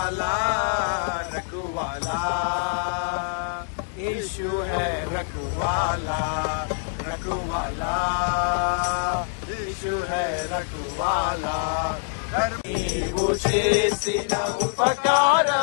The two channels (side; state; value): right; silent; 62 dB below the other